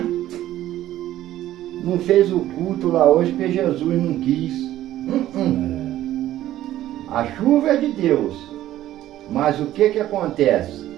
não fez o culto lá hoje porque Jesus não quis. A chuva é de Deus, mas o que acontece?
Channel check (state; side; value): quieter; left; 13.6 dB